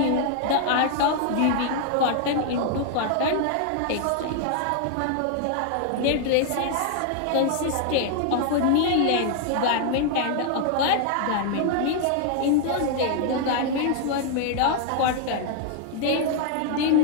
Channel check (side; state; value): both; different; correlation 0.00